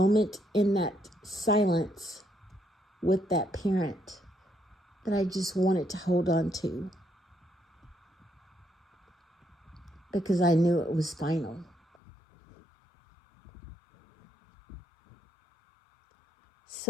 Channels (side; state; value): right; drops out; at 12.0 s